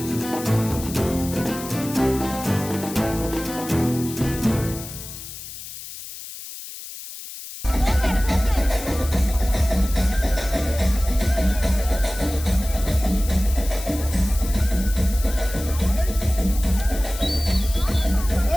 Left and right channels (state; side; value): noise; left; hiss, 12 dB below the sound